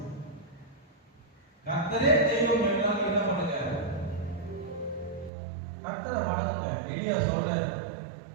கர்த்தரே தெய்வம் என்றால் என்ன பண்ணுங்க? கர்த்தரை வணங்குங்க. எலியா சொல்றாரு,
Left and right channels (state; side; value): drops out; left; at 5.3 s